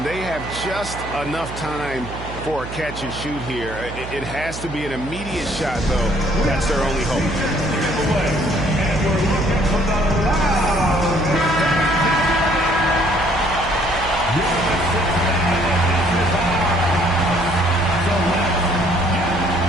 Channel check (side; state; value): right; noise; hum, 11 dB below the sound